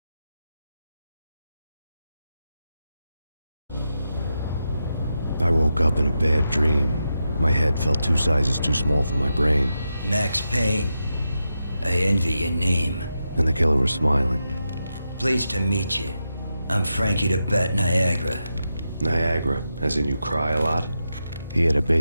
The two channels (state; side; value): inverted; both; correlation -0.87